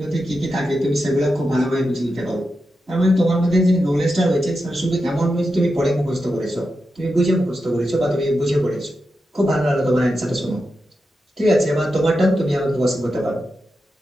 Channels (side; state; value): both; normal; correlation 0.89